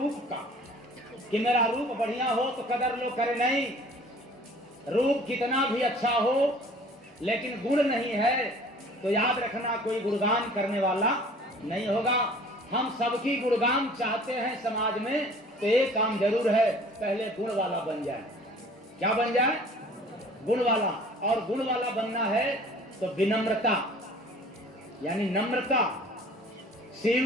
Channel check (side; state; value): both; normal; correlation 0.50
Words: का, कि मेरा रूप बढ़िया हो तो कदर लो करे नहीं। रूप कितना भी अच्छा हो, लेकिन गुण नहीं है तो याद रखना कोई गुणगान करने वाला नहीं होगा। हम सबकी गुणगान चाहते हैं समाज में, तो एक काम जरूर है, पहले गुण वाला बन जाए। क्या बन जाए? गुण वाला। और गुण वाला बनना है तो विनम्रता, यानी नम्रता,